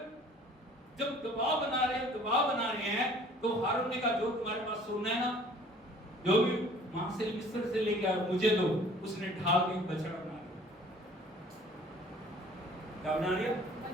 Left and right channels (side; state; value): both; normal; correlation 0.52